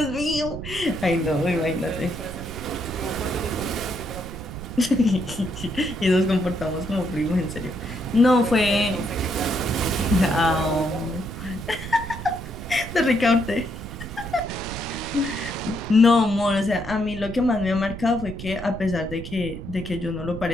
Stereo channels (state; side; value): noise; right; rumble, 10 dB below the sound